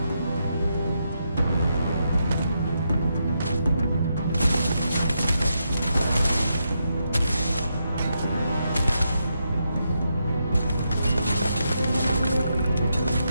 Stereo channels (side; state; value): both; inverted; correlation -0.82